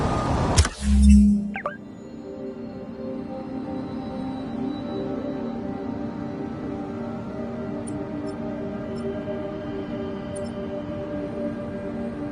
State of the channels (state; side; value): identical; both; correlation 1.00